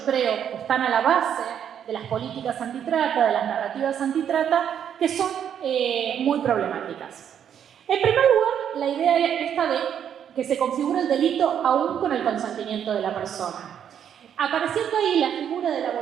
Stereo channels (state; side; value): quieter; left; 9.0 dB